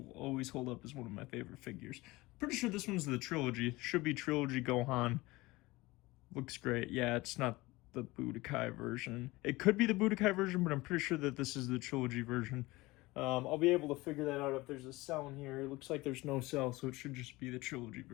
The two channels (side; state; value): right; quieter; 21.0 dB